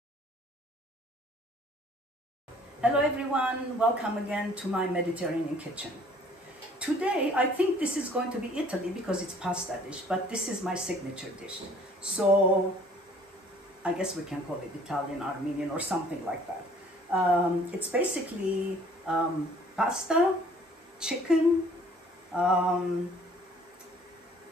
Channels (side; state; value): both; normal; correlation 0.55